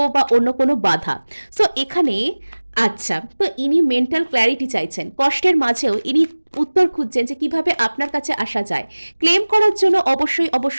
বা অন্য কোনো বাধা। সো এখানে আচ্ছা, তো ইনি মেন্টাল ক্ল্যারিটি চাইছেন, কষ্টের মাঝেও ইনি উত্তর খুঁজছেন যে কিভাবে আপনার কাছে আসা যায়। ক্লেম করার জন্য অবশ্যই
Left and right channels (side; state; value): both; inverted; correlation -1.00